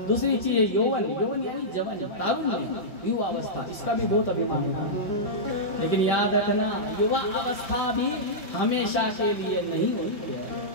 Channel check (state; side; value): late; right; 5.0 ms